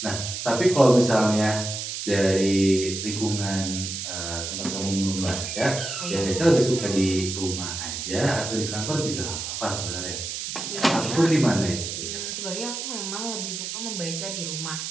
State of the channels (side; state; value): right; noise; hiss, 5 dB below the sound